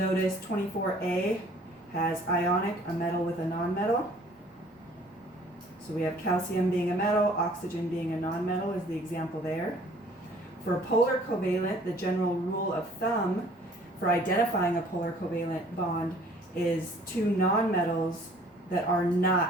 24A has ionic, a metal with a nonmetal. So we have calcium being a metal, oxygen being a nonmetal is the example there. For a polar covalent, the general rule of thumb for identifying a polar covalent bond is two nonmetals that are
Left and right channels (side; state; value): both; normal; correlation 0.55